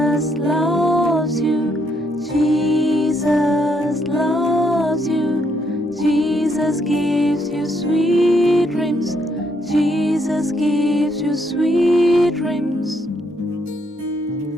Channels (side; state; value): both; normal; correlation 0.74